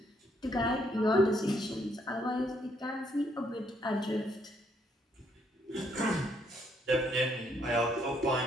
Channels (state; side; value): normal; both; correlation 0.71